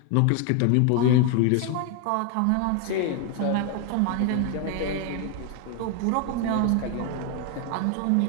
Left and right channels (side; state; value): both; different; correlation 0.01